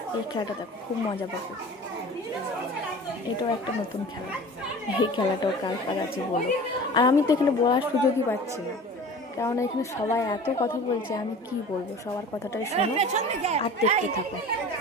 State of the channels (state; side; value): normal; both; correlation 0.40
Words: এই খেলাটা দেখো, খুব মজা পাবে। এটাও একটা নতুন খেলা, এই খেলাটাও কার কার আছে বলো। আর আমি তো এখানে বলার সুযোগই পাচ্ছি না, কারণ এখানে সবাই এত কথা বলছে, আমি কি বলবো। সবার কথাটাই শোনো আর দেখতে থাকো